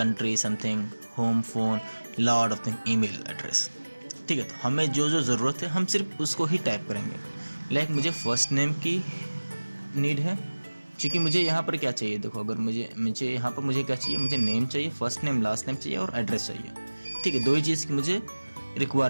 something, home phone, lot of thing, email address. ठीक है, तो हमें जो ज़रूरत है हम सिर्फ उसको ही टाइप करेंगे. लाइक मुझे फर्स्ट नेम की नीड है, क्योंकि मुझे यहाँ पर क्या चाहिए, देखो अगर मुझे यहाँ पर मुझे क्या चाहिए, मुझे नेम चाहिए, फर्स्ट नेम लास्ट नेम चाहिए और एड्रेस चाहिए। ठीक है, दो ही चीज़ की मुझे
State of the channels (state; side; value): inverted; both; correlation -1.00